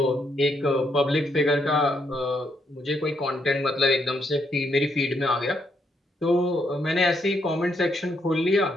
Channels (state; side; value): normal; both; correlation 0.76